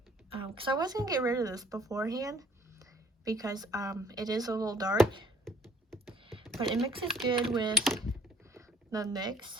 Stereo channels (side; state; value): both; normal; correlation 0.57